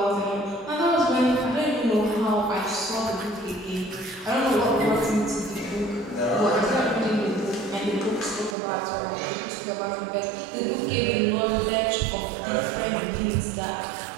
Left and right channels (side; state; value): left; drops out; at 8.6 s